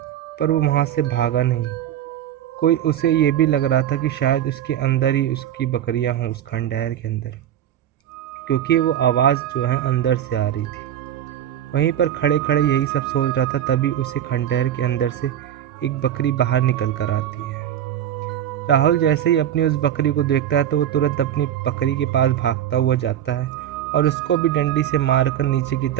पर वो वहाँ से भागा नहीं। कोई उसे ये भी लग रहा था कि शायद उसके अंदर ही उसकी बकरियां हों, उस खंडहर के अंदर, क्योंकि वो आवाज़ जो है अंदर से आ रही थी। वहीं पर खड़े खड़े यही सब सोच रहा था, तभी उसे खंडहर के अंदर से एक बकरी बाहर निकल कर आती है। राहुल जैसे ही अपनी उस बकरी को देखता है तो वो तुरंत अपनी बकरी के पास भागता हुआ जाता है और उसको भी डंडी से मारकर नीचे की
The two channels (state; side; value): quieter; left; 10.8 dB